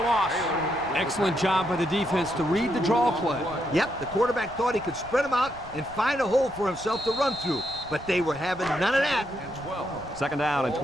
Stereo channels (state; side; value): noise; right; rumble, 18 dB below the sound